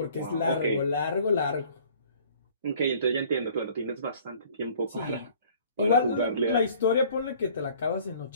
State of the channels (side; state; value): both; inverted; correlation -0.54